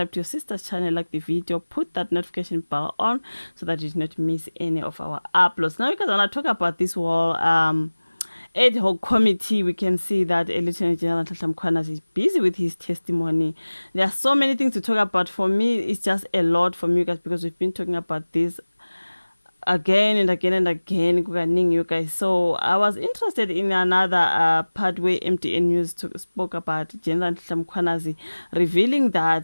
to your sister's channel, like the video, put that notification bell on so that you do not miss any of our uploads. Now, because I want to talk about this whole ad hoc committee, we can see that Lieutenant General Nhlanhla Mkhwanazi is busy with his testimony. There are so many things to talk about. For me, it's just a lot for me guys, because we've been talking about this again and again and again, you guys. So I was interested in another part where MTN News spoke about General Nhlanhla Mkhwanazi revealing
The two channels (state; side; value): inverted; both; correlation -1.00